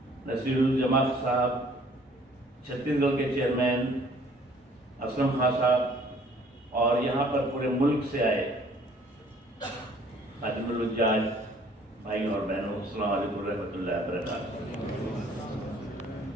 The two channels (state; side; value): normal; both; correlation 0.57